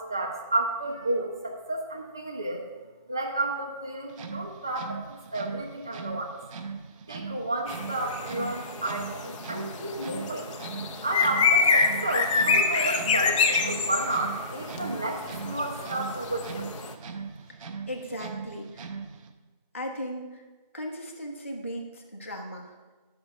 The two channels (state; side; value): inverted; both; correlation -0.41